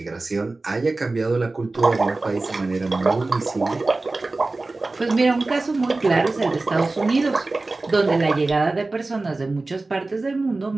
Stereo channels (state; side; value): quieter; left; 3.3 dB